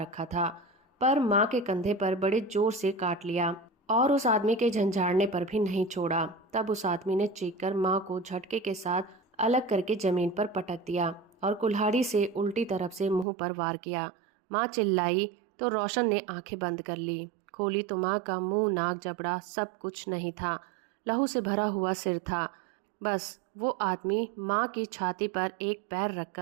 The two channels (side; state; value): left; drops out; at 13.2 s